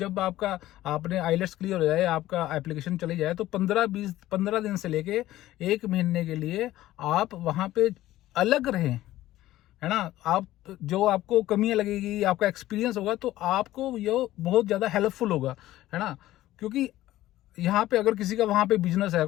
आपने आइलेट्स क्लियर हो जाए, आपका एप्लीकेशन चली जाए, तो 15 दिन से लेके 1 महीने के लिए आप वहाँ पे अलग रहें, है ना। आप जो आपको कमियां लगेगी, आपका एक्सपीरियंस होगा, तो आपको ये बहुत ज़्यादा हेल्पफुल होगा, है ना। क्योंकि यहाँ पे अगर किसी का वहाँ पे बिजनेस है,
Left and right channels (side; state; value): right; quieter; 15.1 dB